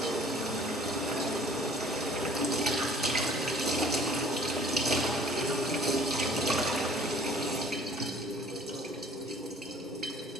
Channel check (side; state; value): both; normal; correlation 0.53